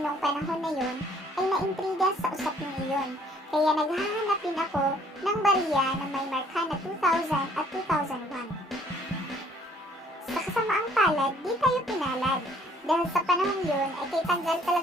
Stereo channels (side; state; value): both; normal; correlation 0.61